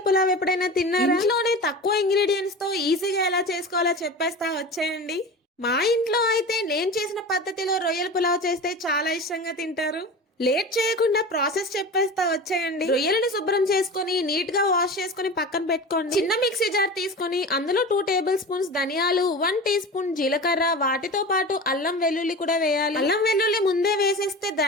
పులావ్ ఎప్పుడైనా తిన్నారా? ఇంట్లోనే తక్కువ ఇంగ్రీడియంట్స్ తో ఈజీగా ఎలా చేసుకోవాలో చెప్పేస్తా, వచ్చేయండి. మా ఇంట్లో అయితే నేను చేసిన పద్ధతిలో రొయ్యల పులావ్ చేస్తే చాలా ఇష్టంగా తింటారు. లేట్ చేయకుండా ప్రాసెస్ చెప్పేస్తా, వచ్చేయండి. రొయ్యలను శుభ్రం చేసుకుని నీట్ గా వాష్ చేసుకుని పక్కన పెట్టుకోండి. చిన్న మిక్సీ జార్ తీసుకుని అందులో 2 టేబుల్ స్పూన్స్ ధనియాలు, 1 టీ స్పూన్ జీలకర్ర, వాటితో పాటు అల్లం వెల్లుల్లి కూడా వేయాలి. అల్లం వెల్లుల్లి ముందే వేసేస్తే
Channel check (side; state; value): both; normal; correlation 0.32